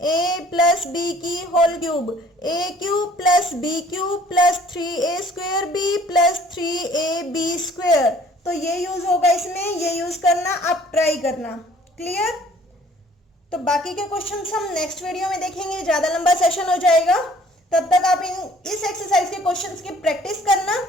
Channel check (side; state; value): both; normal; correlation 0.55